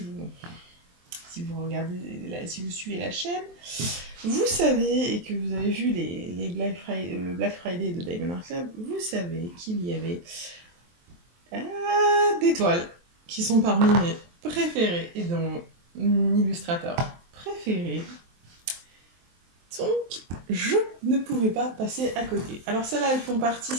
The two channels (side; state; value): left; late; 23 ms